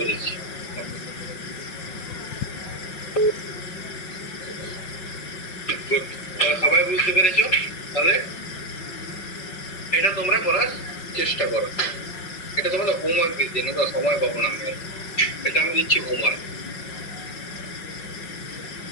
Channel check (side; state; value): right; late; 5.4 ms